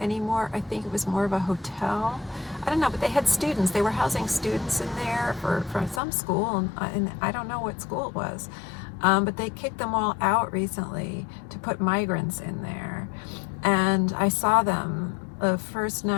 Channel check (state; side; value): drops out; right; at 6.0 s